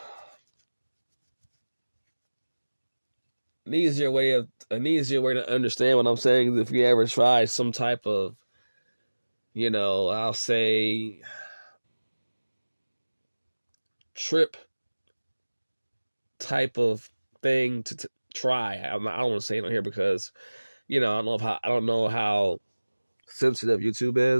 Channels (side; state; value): both; inverted; correlation -1.00